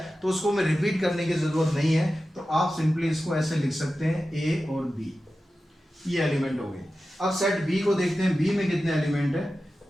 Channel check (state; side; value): normal; both; correlation 0.93